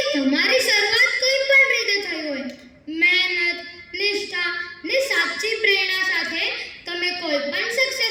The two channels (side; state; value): both; identical; correlation 1.00